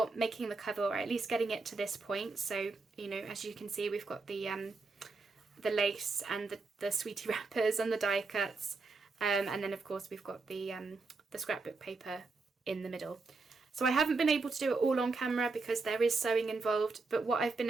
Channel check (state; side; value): quieter; left; 3.9 dB